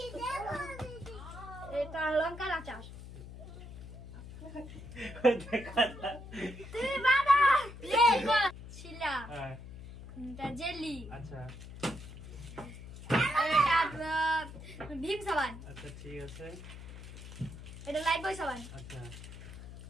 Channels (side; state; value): left; noise; hum, 13 dB below the sound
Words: এটা লঙ্কার আচার। তুই বাবা ছিলা। এটা জেলি। আচ্ছা। এটা ভীম সাবান। আচ্ছা ঠিক আছে। এটা লাইট বয় সাবান। আচ্ছা।